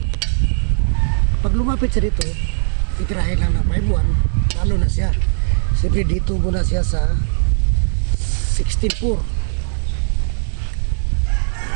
Kapag lumapit siya dito, titirahin lang ng 5.1, talo na siya. Siyempre dito muna siya sa 16.4.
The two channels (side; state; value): left; silent; digital silence